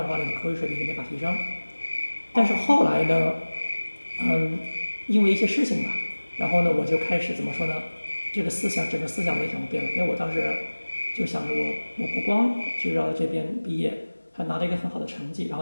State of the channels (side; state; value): both; inverted; correlation -1.00